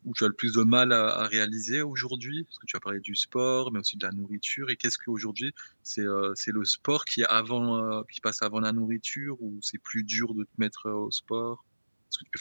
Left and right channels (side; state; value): both; inverted; correlation -1.00